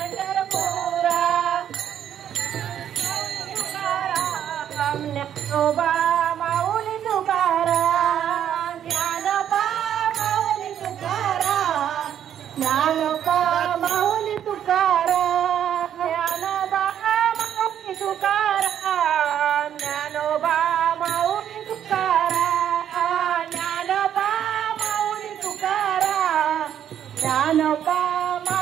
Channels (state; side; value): quieter; left; 9.8 dB